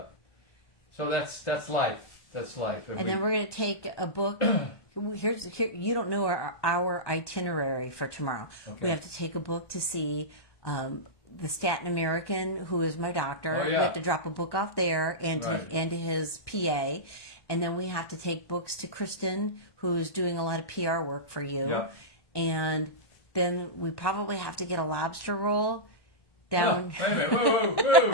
so that's life. That's life. And then we're going to take a book. Here, you don't know our itinerary for tomorrow. Okay. We have to take a book to see the Staten American, who is my doctor. Oh, yeah. We have to drop a book off there and to his PA. And then we have to take books to Kristen, who's doing a lot of PR work for you. Yeah. And then we probably have to get a lobster roll down. Oh, wait a minute. Whoa, whoa,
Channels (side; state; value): right; late; 1.2 ms